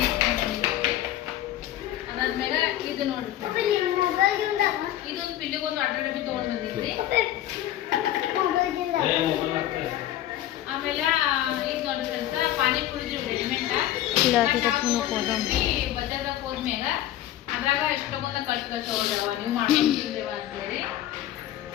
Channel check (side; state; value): right; quieter; 13.0 dB